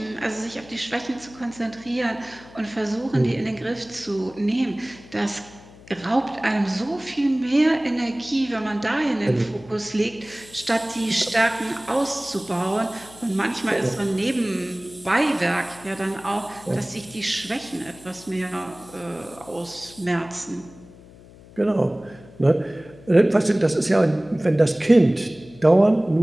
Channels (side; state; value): left; noise; hum, 21 dB below the sound